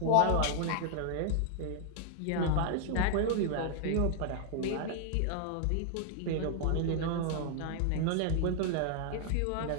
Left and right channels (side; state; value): both; different; correlation 0.00